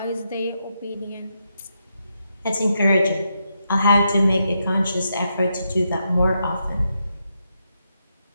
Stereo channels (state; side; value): inverted; both; correlation -0.83